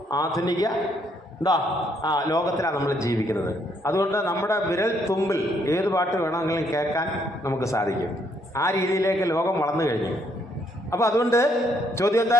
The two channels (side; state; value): both; normal; correlation 0.71